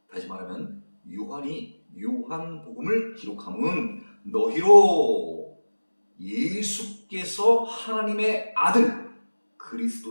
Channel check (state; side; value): inverted; both; correlation -1.00